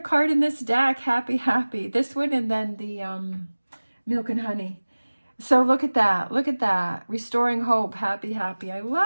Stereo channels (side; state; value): both; inverted; correlation -1.00